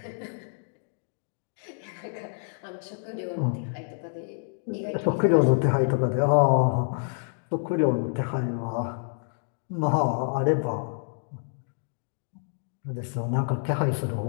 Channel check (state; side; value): silent; right; digital silence